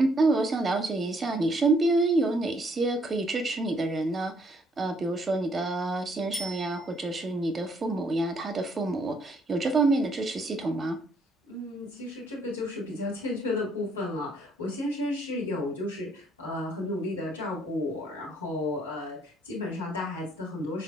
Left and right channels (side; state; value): both; normal; correlation 0.68